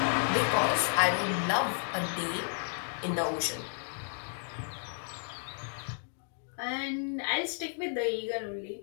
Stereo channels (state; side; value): silent; right; digital silence